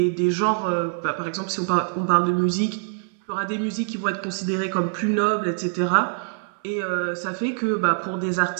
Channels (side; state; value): left; silent; digital silence